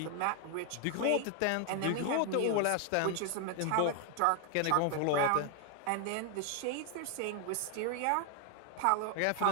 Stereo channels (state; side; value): different; both; correlation 0.00